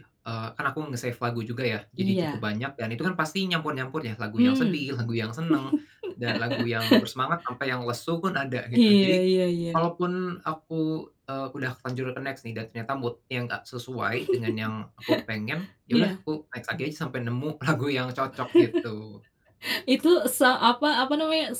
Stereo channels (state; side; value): identical; both; correlation 1.00